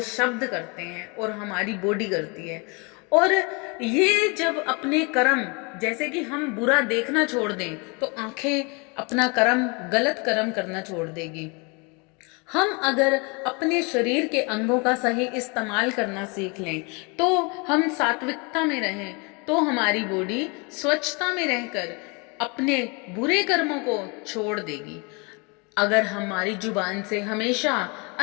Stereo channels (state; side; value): quieter; right; 30.7 dB